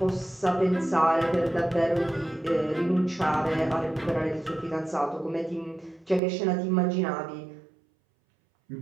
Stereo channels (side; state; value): left; drops out; at 6.2 s